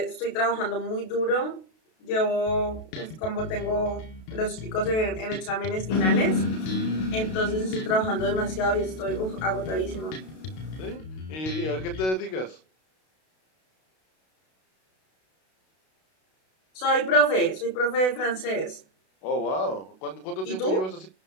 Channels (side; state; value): right; late; 32 ms